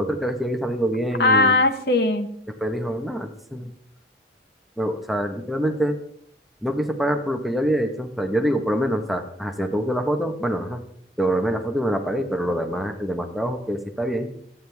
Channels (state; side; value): normal; both; correlation 0.51